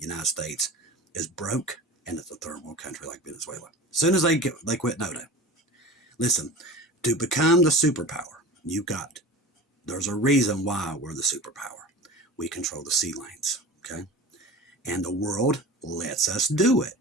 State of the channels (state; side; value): normal; both; correlation 0.35